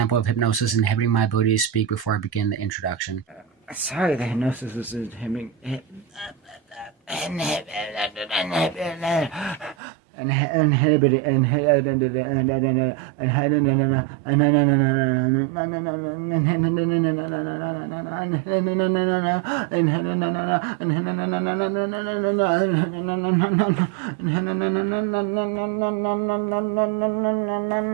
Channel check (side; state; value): left; drops out; at 9.8 s